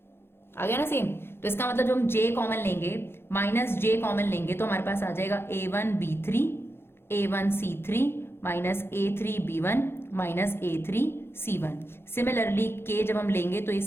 आ गया ना सेम। तो इसका मतलब जो हम j कॉमन लेंगे, माइनस j कॉमन लेंगे, तो हमारे पास आ जाएगा a1b3 a1c3 minus A3B1 minus A3C1। Similarly K जब हम लेंगे तो ये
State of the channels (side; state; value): right; late; 0.11 ms